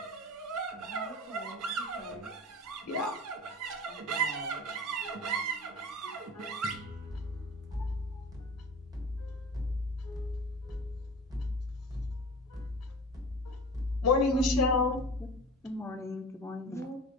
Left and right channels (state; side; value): normal; both; correlation 0.37